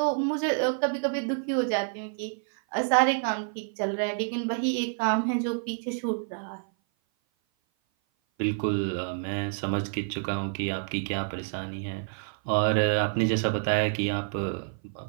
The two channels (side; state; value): left; silent; 56 dB below the other